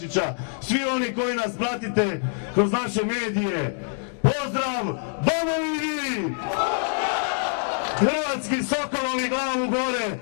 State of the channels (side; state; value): right; silent; digital silence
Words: svi oni koji nas pratite kroz naše medije, pozdrav domovini! Hrvatski sokolovi glavu gore